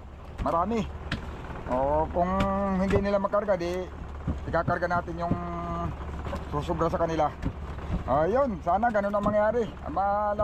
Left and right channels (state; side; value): identical; both; correlation 1.00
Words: marami. Oh, kung hindi nila makarga, di ikakarga natin yung susubra sa kanila. Ayun, sana ganun ang mangyari.